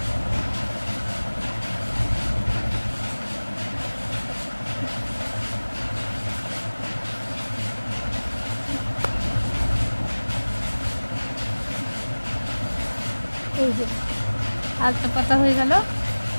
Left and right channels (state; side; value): inverted; both; correlation -1.00